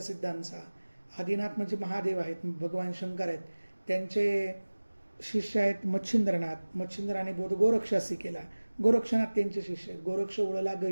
आदिनाथ म्हणजे महादेव आहेत, भगवान शंकर आहेत. त्यांचे शिष्य आहेत मच्छिंद्रनाथ. मच्छिंद्राने बोध गोरक्षासी केला, गोरक्षनाथ त्यांचे शिष्य आहेत. गोरक्ष उडला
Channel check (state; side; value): inverted; both; correlation -1.00